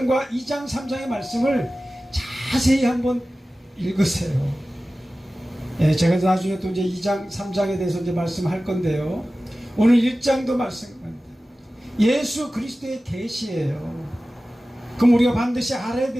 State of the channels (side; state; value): both; normal; correlation 0.96